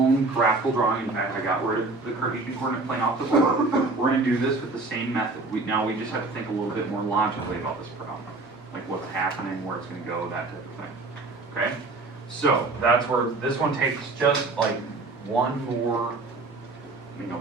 graphical drawing. In fact, I got rid of the Cartesian coordinate plane off the board. We're gonna do this with the same method. Now we just have to think a little bit more logically about this problem. Like what's happening, where it's gonna go, that type of thing, okay? So, that's where this one takes just like one more,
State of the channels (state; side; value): quieter; left; 3.4 dB